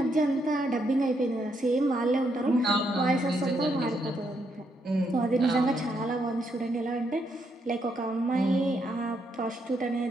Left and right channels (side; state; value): both; normal; correlation 0.77